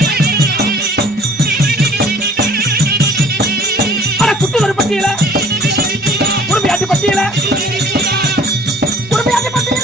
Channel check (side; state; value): both; normal; correlation 0.53